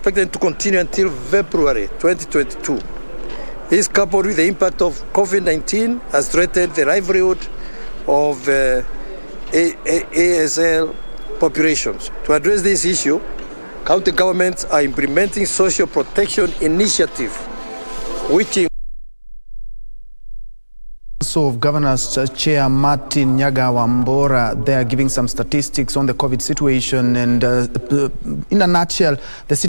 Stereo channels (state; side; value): inverted; both; correlation -1.00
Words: to continue until February 2022. This, coupled with the impact of COVID-19, has threatened the livelihood of ASL populations. To address this issue, county governments are implementing social protection initiative, which of Governors Chair Martin Nyaga Wambora, they are giving some statistics on the COVID situation, and in a nutshell, the